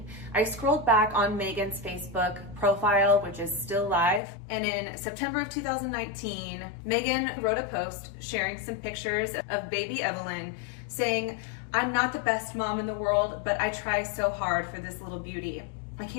I scrolled back on Megan's Facebook profile, which is still live. And in September of 2019, Megan wrote a post sharing some pictures of baby Evelyn saying, "I'm not the best mom in the world, but I try so hard for this little beauty. I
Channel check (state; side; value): drops out; right; at 4.2 s